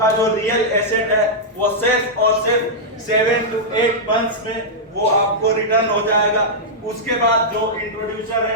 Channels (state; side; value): normal; both; correlation -0.08